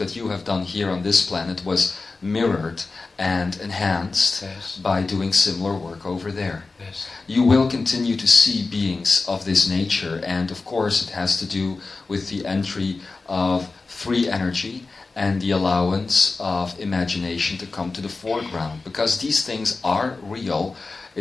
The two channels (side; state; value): right; quieter; 3.8 dB